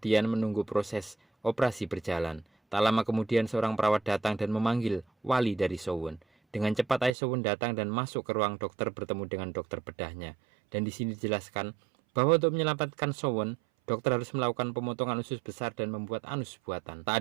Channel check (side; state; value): left; drops out; at 7.2 s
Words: menunggu proses operasi berjalan. Tak lama kemudian seorang perawat datang dan memanggil wali dari Sowon. Dengan cepat ayah Sowon datang dan masuk ke ruang dokter bertemu dengan dokter bedahnya. Dan di sini dijelaskan bahwa untuk menyelamatkan Sowon, dokter harus melakukan pemotongan usus besar dan membuat anus buatan. Tak